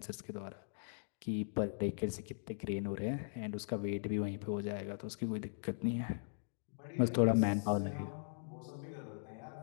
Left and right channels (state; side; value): silent; right; digital silence